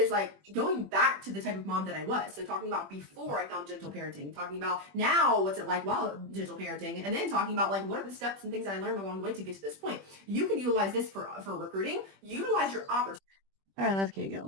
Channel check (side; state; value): left; late; 21 ms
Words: like going back to the type of mom that I was. So talking about before I found gentle parenting, talking about now what's it like while gentle parenting, and then talking about like what are the steps and things that I learned along the way to get to this point. You can utilize this for recruiting. Utilize your opportunity. All right, let's keep